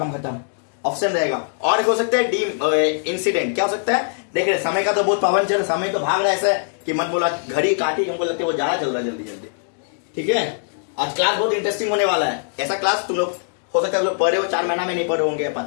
खत्म, ऑप्शन रहेगा। और एक हो सकता है डी इंसिडेंट। क्या हो सकता है? देख रहे समय का तो बहुत पाबंद चल, समय तो भाग रहा है ऐसा कि मत बोला घड़ी काटी, हमको लगता है वो ज्यादा चल रहा है, जल्दी जल्दी, ठीक है। आज क्लास बहुत इंटरेस्टिंग होने वाला है, ऐसा क्लास तुम लोग हो सकता है लोग पढ़े हो 4 महीना में, नहीं पढ़े होंगे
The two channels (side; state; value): right; silent; digital silence